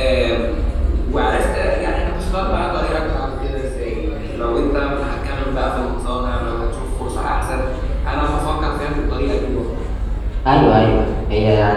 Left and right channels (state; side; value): identical; both; correlation 1.00